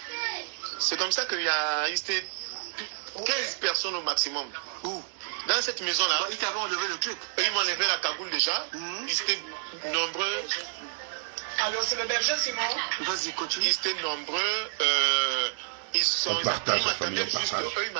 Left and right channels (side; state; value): left; silent; digital silence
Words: C'est comme ça qu'il y a 15 personnes au maximum. Où? Dans cette maison là. Ils t'avaient enlevé le truc. Ils m'ont enlevé la cagoule déjà. Ils étaient nombreux. Alors c'est le berger Simon. Vas-y, continue. Ils étaient nombreux. On partage la famille, on partage. Eux, ils